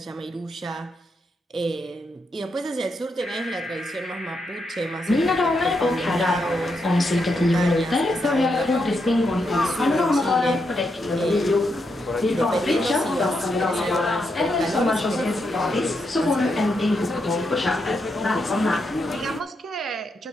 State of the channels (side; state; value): both; normal; correlation 0.82